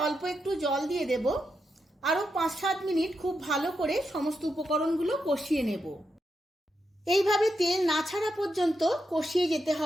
অল্প একটু জল দিয়ে দেব। আরও 5-7 মিনিট খুব ভালো করে সমস্ত উপকরণগুলো কষিয়ে নেব। এইভাবে তেল না ছাড়া পর্যন্ত কষিয়ে যেতে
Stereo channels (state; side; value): normal; both; correlation 0.85